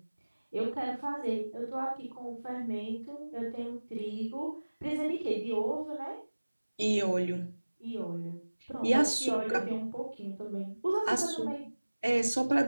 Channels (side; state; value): both; inverted; correlation -1.00